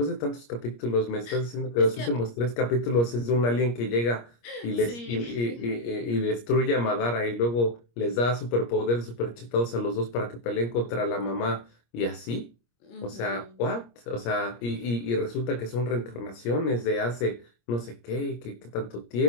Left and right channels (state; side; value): late; right; 25 ms